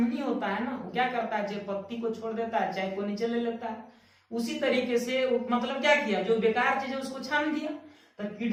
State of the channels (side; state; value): both; identical; correlation 1.00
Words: होता है ना, वो क्या करता है, चाय पत्ती को छोड़ देता है, चाय को नीचे ले लेता है। उसी तरीके से मतलब क्या किया, जो बेकार चीज है उसको छान दिया। तो